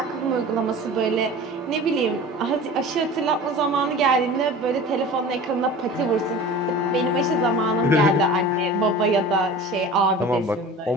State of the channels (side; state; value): both; normal; correlation 0.38